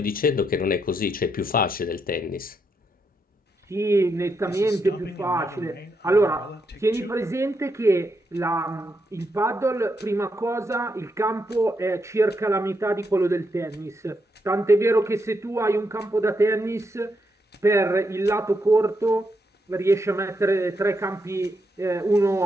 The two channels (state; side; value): normal; both; correlation 0.81